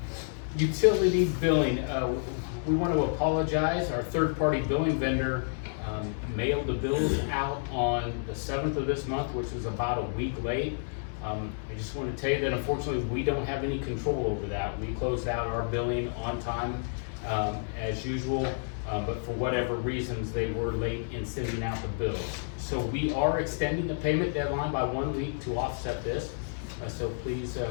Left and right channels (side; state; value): right; silent; digital silence